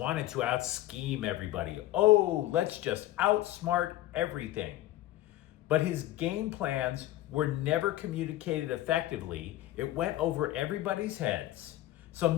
to out-scheme everybody. Oh, let's just outsmart everything. But his game plans were never communicated effectively. It went over everybody's heads. So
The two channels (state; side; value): quieter; right; 15.0 dB